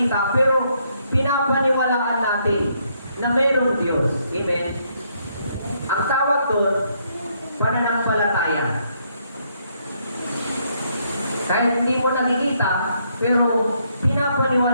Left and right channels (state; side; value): inverted; both; correlation -0.73